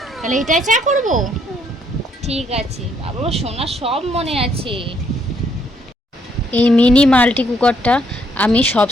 তাহলে এটাই চা করব। ঠিক আছে বাবা, সোনা সব মনে আছে। এই মিনি মাল্টি কুকারটা আমি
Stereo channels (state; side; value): normal; both; correlation 0.70